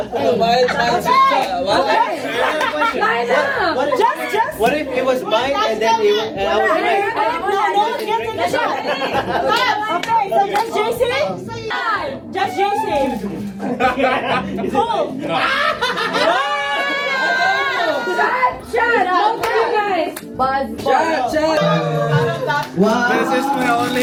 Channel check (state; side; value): identical; both; correlation 1.00